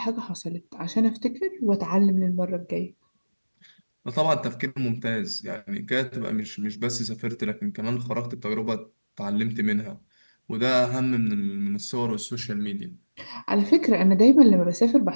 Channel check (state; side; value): inverted; both; correlation -1.00